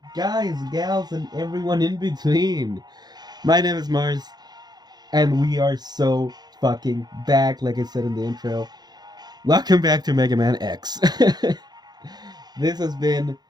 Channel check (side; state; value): left; late; 0.20 ms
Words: guys, gals, and everyone in between. My name is Mars, and we are so fucking back, like I said in the intro. Welcome back to Mega Man X. This has been